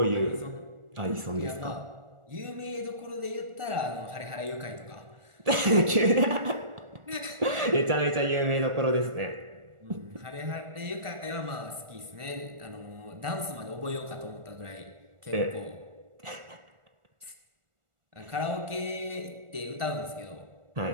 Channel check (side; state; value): left; late; 1.4 ms